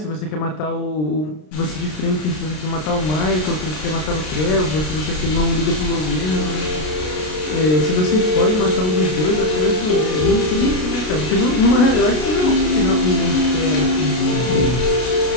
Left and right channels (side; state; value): right; late; 33 ms